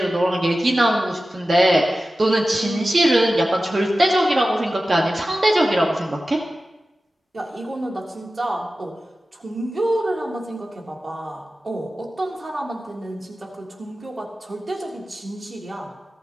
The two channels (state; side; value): normal; both; correlation 0.95